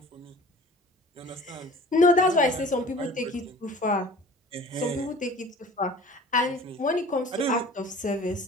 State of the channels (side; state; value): both; normal; correlation 0.45